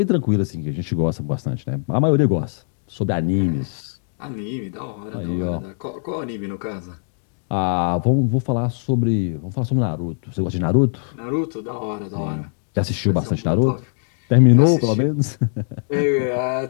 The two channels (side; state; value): right; silent; digital silence